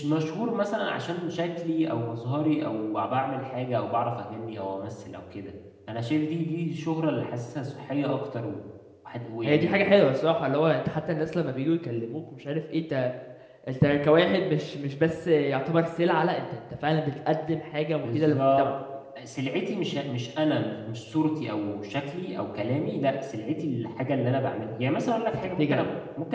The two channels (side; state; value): both; identical; correlation 1.00